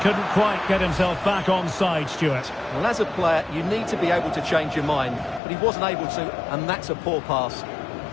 quite get himself back on side, Stuart. Well, as a player, you need to be able to change your mind, but he wasn't able to, and that's a poor pass.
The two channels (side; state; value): right; drops out; at 5.4 s